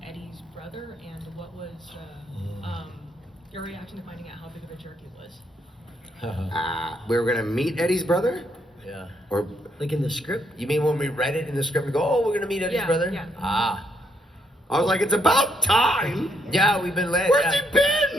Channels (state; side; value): normal; both; correlation 0.74